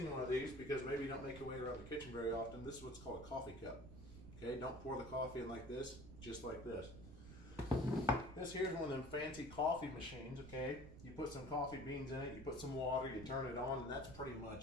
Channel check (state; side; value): noise; right; rumble, 13 dB below the sound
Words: one of these, because maybe you don't make your way around the kitchen very often, this is what's called a coffee cup. Okay, don't pour the coffee in like this, just like this. This here's one of them fancy coffee machines, okay? You put some coffee beans in it, you put some water, you turn it on, and that's pretty